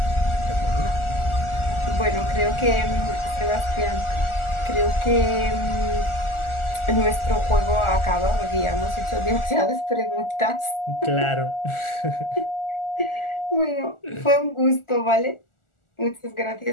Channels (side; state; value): right; late; 1.4 ms